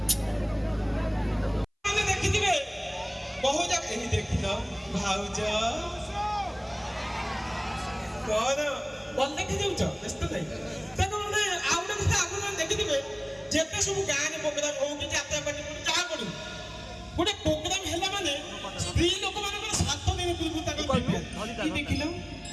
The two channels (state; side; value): identical; both; correlation 1.00